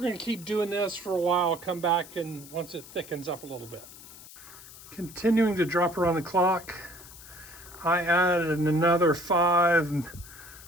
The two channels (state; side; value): noise; left; hiss, 18 dB below the sound